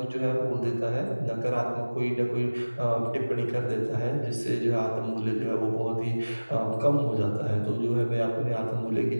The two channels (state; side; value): inverted; both; correlation -1.00